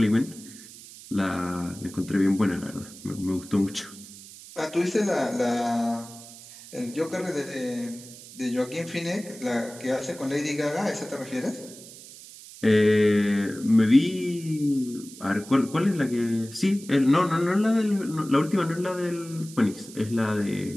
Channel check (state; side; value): noise; right; hiss, 17 dB below the sound